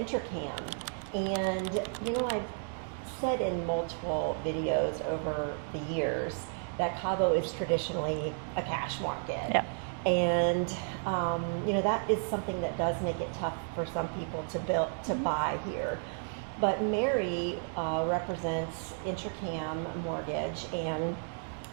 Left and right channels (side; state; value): left; silent; 56 dB below the other